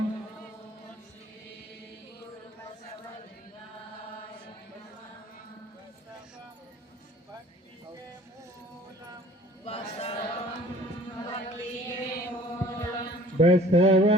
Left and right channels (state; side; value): normal; both; correlation 0.51